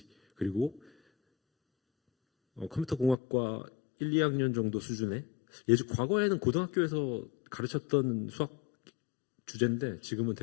그리고 컴퓨터 공학과 1, 2학년 정도 수준의 과거에는 고등학교에서 가르쳤던 수학 주제인데 지금은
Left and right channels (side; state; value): right; drops out; at 3.2 s